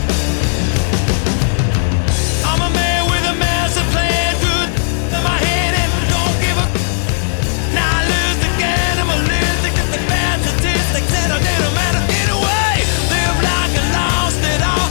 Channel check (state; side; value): silent; right; digital silence